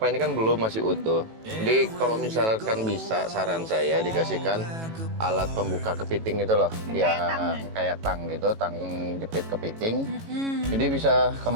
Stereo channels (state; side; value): late; left; 18 ms